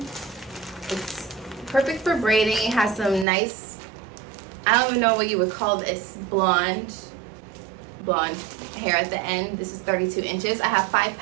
It's perfect for braiding. It has some nice, I don't even know what you would call this, blonde hair at the end. This is 32 inches. I have 5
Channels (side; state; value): left; drops out; at 3.2 s